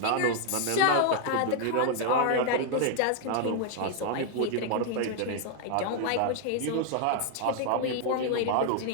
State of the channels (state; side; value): different; both; correlation 0.00